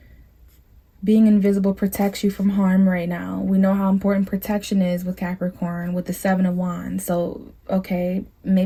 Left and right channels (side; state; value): both; identical; correlation 1.00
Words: being invisible protects you from harm right now. We know how important protection is with Capricorn, with the Seven of Wands. So, okay,